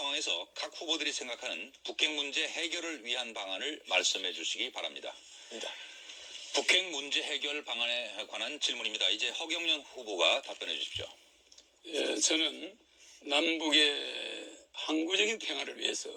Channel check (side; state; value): both; identical; correlation 1.00